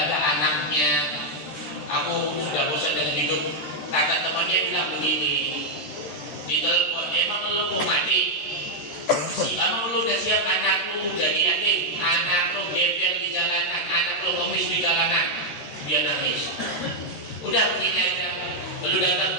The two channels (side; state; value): right; late; 14 ms